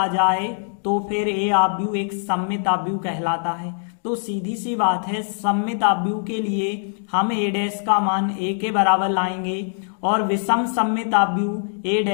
जाए तो फिर ए अभ्यु एक सममिताभ्यु कहलाता है। तो सीधी सी बात है, सममिताभ्यु के लिए हम ए डैश का मान ए के बराबर लाएंगे और विषम सममिताभ्यु ए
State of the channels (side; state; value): right; silent; digital silence